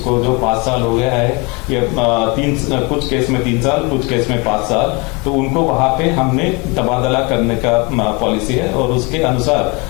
जो 5 साल हो गया है, कुछ केस में 3 साल, कुछ केस में 5 साल, तो उनको वहां पे हमने तबादला करने का पॉलिसी है और उसके अनुसार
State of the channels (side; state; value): right; quieter; 28.5 dB